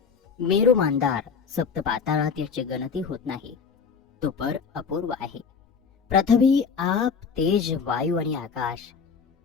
मेरू मांदार, सप्त पाताळात याची गणती होत नाही. तो पर अपूर्व आहे. पृथ्वी, आप, तेज, वायू आणि आकाश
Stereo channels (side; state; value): right; quieter; 5.8 dB